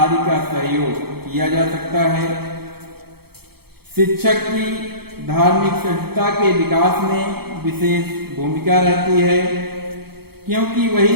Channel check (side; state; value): left; late; 0.96 ms